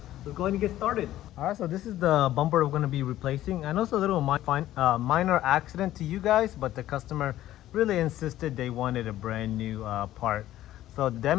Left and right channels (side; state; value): right; quieter; 13.8 dB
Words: Let's go ahead and get started. Alright, so this is the bumper we're going to be replacing. I know it's a little minor accident to you guys, but the customer really insisted they wanted a brand new part. So the